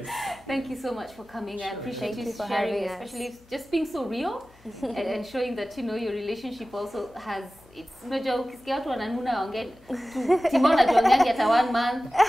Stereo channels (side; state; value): left; noise; hum, 28 dB below the sound